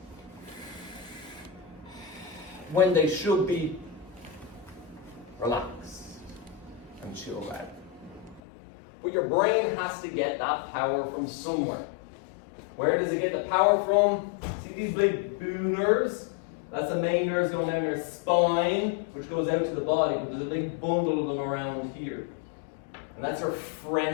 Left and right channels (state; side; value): drops out; right; at 8.4 s